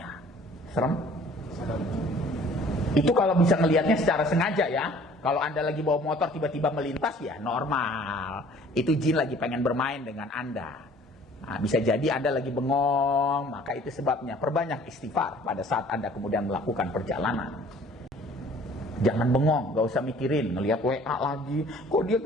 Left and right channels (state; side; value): normal; both; correlation 0.53